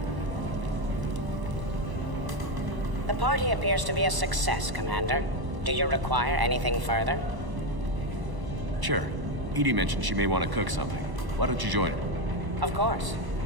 The party appears to be a success, Commander. Do you require anything further? Sure. Edie mentioned she may want to cook something. Why don't you join her? Of course.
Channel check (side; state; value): left; late; 1.0 ms